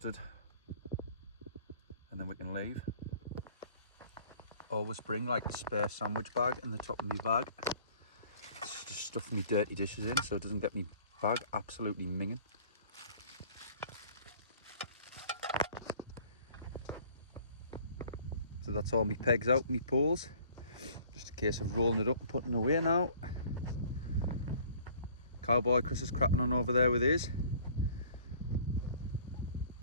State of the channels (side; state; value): both; inverted; correlation -0.53